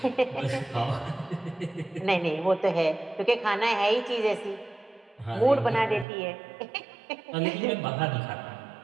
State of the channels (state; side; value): drops out; left; at 6.1 s